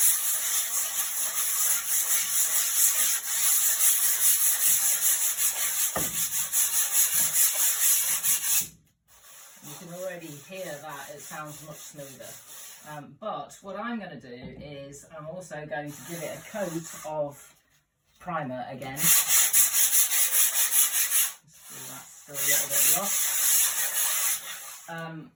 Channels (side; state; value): both; identical; correlation 1.00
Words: Hear that, it sounds much smoother. But what I'm going to do is I'm also going to give it a coat of primer again. That's still a little bit rough.